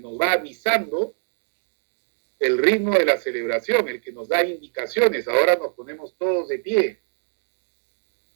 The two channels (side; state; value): left; silent; digital silence